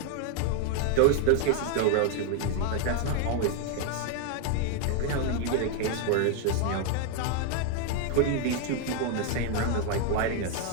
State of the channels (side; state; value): both; different; correlation 0.01